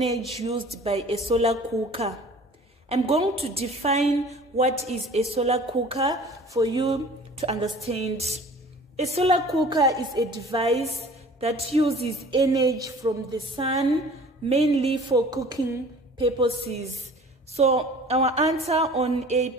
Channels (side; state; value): both; normal; correlation 0.47